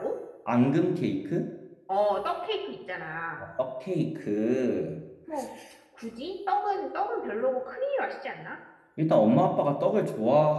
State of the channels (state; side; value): identical; both; correlation 1.00